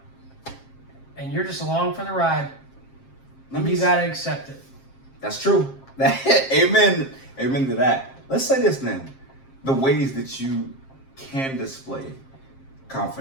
And you're just along for the ride. You gotta accept it. That's true. Amen. Amen to that. Let's say this then. The ways that you can display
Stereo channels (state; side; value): late; right; 7.5 ms